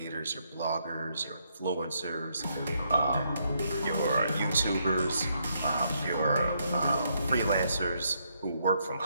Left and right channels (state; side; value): inverted; both; correlation -0.75